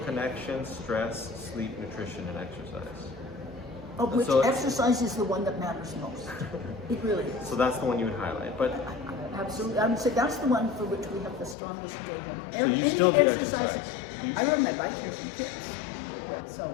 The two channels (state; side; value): drops out; right; at 11.6 s